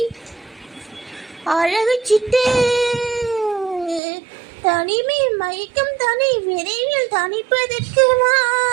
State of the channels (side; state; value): left; drops out; at 4.0 s